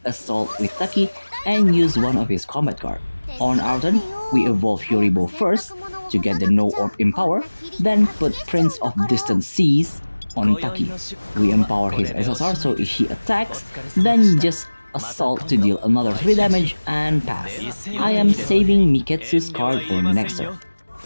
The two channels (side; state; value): both; inverted; correlation -1.00